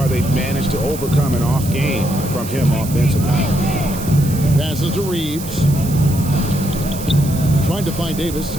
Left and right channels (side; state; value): right; noise; hiss, 12 dB below the sound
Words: they've managed to overcome an off game from him offensively. Passes to Reeves. Trying to find Davis.